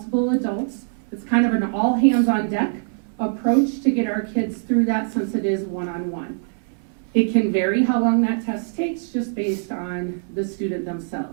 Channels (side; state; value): left; silent; 64 dB below the other